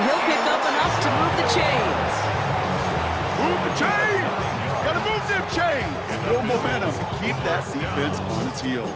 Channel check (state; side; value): identical; both; correlation 1.00